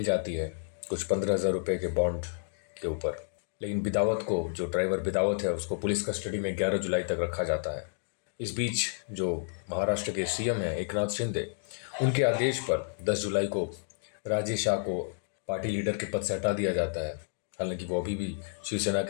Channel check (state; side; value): silent; right; digital silence